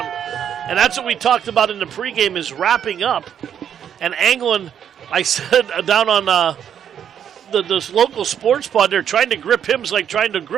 And that's what we talked about in the pregame is wrapping up. And Anglin, I said down on this local sports pod, they're trying to grip him. It's like trying to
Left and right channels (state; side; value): quieter; left; 8.9 dB